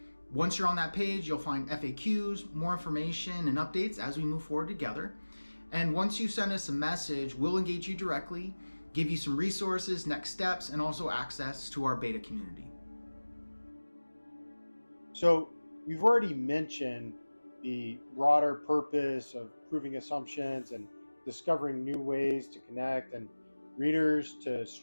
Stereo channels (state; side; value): inverted; both; correlation -1.00